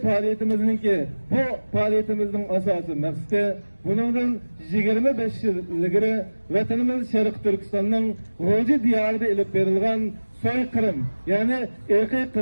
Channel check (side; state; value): both; inverted; correlation -1.00